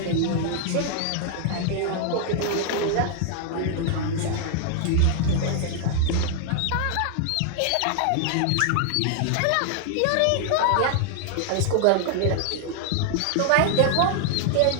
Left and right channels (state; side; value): different; both; correlation 0.00